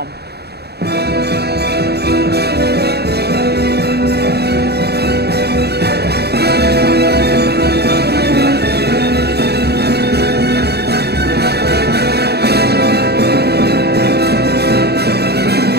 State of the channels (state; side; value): late; left; 0.47 ms